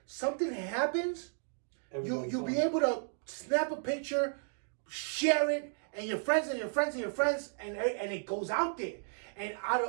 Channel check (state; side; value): silent; left; digital silence